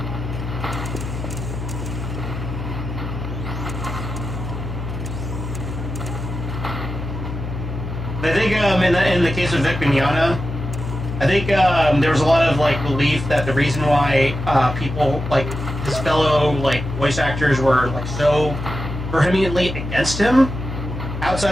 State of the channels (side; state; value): left; noise; hum, 6 dB below the sound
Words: I think in the case of Vic Mignogna, I think there was a lot of like belief that the reason why people like his fellow like voice actors were like so vehemently against him,